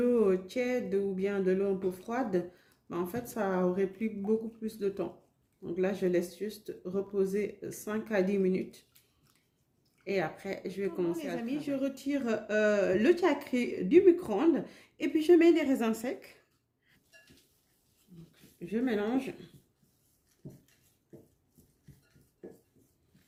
tiède ou bien de l'eau un peu froide, ben en fait, ça aurait pris beaucoup plus de temps. Donc là, je laisse juste reposer 5 à 10 minutes. Et après, je vais commencer à travailler. Je retire le chakri du micro-ondes et puis je mets les raisins secs. Je mélange.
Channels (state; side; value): identical; both; correlation 1.00